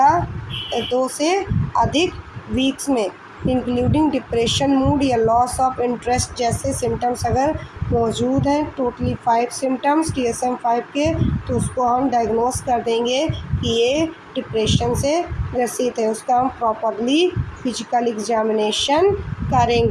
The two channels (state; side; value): identical; both; correlation 1.00